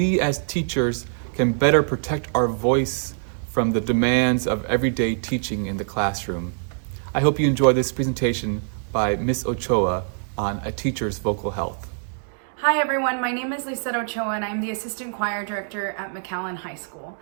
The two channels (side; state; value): left; silent; digital silence